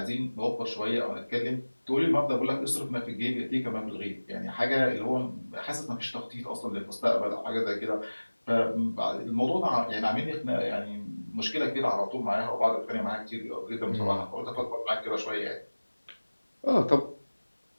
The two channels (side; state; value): both; inverted; correlation -1.00